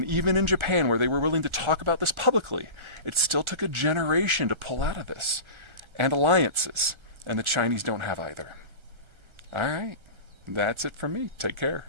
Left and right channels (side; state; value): left; late; 1.3 ms